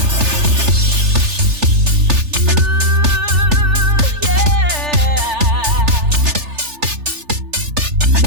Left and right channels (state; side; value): late; left; 3.4 ms